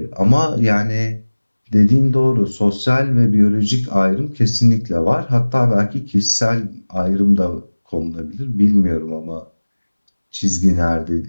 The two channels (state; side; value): inverted; both; correlation -1.00